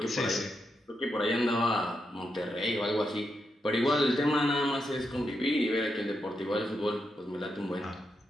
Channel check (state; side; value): normal; both; correlation 0.84